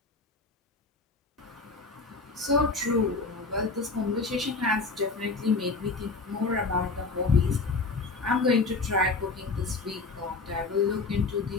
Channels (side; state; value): right; quieter; 3.9 dB